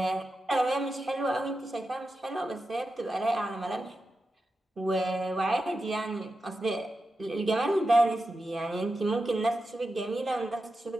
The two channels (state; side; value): normal; both; correlation 0.90